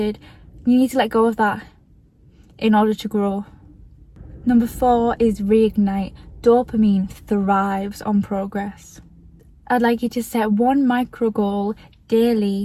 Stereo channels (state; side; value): identical; both; correlation 1.00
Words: You need to let go of that in order to grow. Number 4 is reignite. Dopamine thrives on progress. I'd like you to set one micro goal